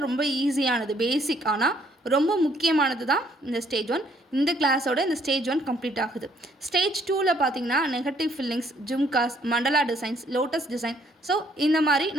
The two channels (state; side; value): normal; both; correlation 0.65